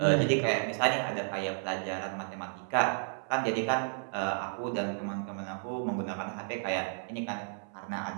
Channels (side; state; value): left; silent; 56 dB below the other